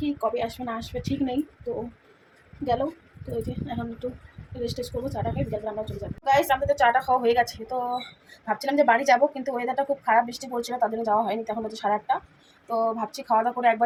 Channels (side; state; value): both; identical; correlation 1.00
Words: কবে আসবে না আসবে ঠিক নেই। তো গেল। তো এই যে এখন একটু রেস্ট টেস্ট করবো, চাটা খাই, বিকাল আমরা চলে যাবো। গাইস আমাদের চাটা খাওয়া হয়ে গেছে। তো ভাবছিলাম যে বাড়ি যাবো, কিন্তু ওয়েদারটা খুব খারাপ, বৃষ্টি পড়ছিল, তার জন্য যাওয়া হয়নি। তখন হচ্ছে 8:30। তো ভাবছি খাওয়া দাওয়া করে